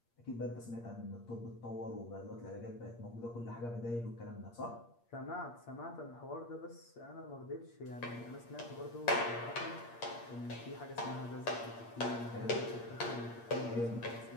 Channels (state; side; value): late; right; 8.6 ms